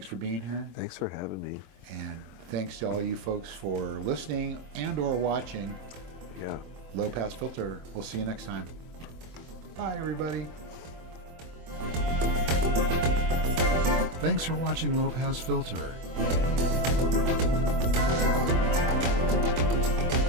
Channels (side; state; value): left; late; 24 ms